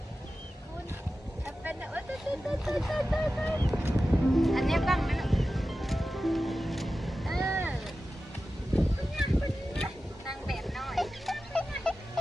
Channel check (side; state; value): both; normal; correlation 0.94